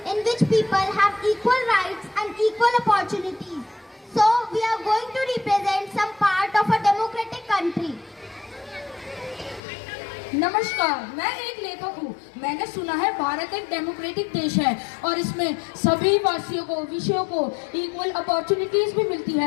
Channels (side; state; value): right; drops out; at 9.6 s